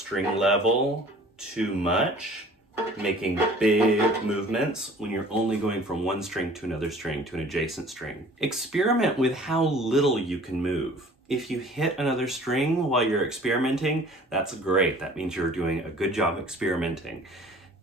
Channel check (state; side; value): normal; both; correlation 0.49